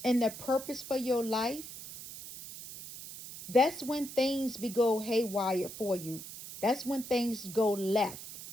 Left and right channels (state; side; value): noise; right; hiss, 12 dB below the sound